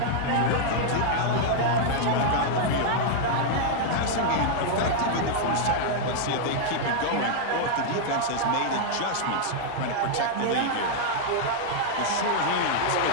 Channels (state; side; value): different; both; correlation -0.01